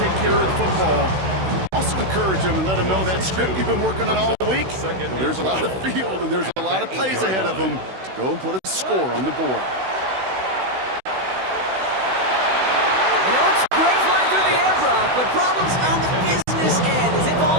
take care of the football. Also encourage them and let them know that script you've been working on all week. Well, there's a lot of field and there's a lot of plays ahead of them to go and put a score on the board. You know, it's great flying through the air, Brock, but problems on the business end as it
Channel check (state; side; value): late; left; 16 ms